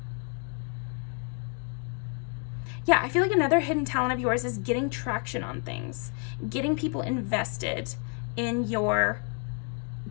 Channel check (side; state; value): right; quieter; 39.4 dB